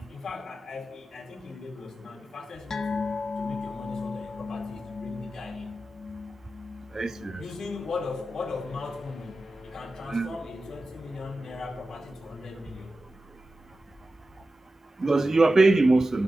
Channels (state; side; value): normal; both; correlation 0.93